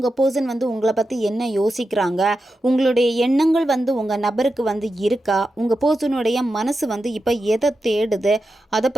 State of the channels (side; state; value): both; normal; correlation 0.89